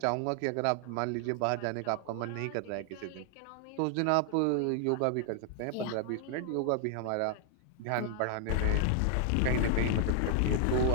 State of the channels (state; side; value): different; both; correlation 0.00